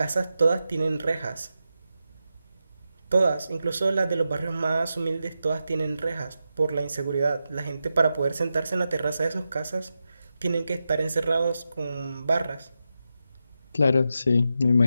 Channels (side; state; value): both; inverted; correlation -0.89